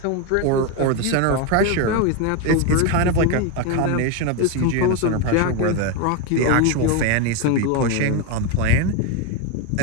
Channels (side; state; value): both; different; correlation 0.02